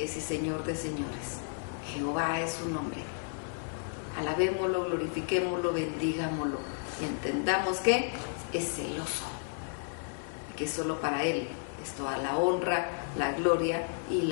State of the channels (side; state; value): right; silent; 56 dB below the other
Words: y Señor de Señores. Jehová es su nombre. Alabémoslo, glorifiquémoslo, bendigámoslo y entendamos que es celoso, que solo para Él es toda la honra, la gloria y